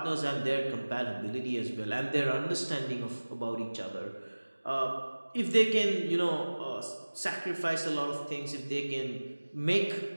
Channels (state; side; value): inverted; both; correlation -1.00